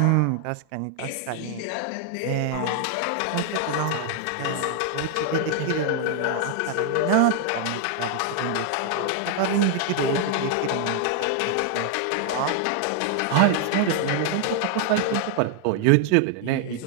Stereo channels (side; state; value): both; different; correlation 0.00